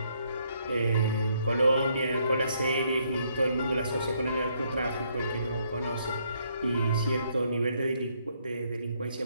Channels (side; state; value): both; inverted; correlation -0.71